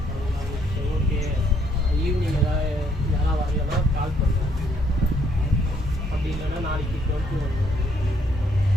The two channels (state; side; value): normal; both; correlation 0.69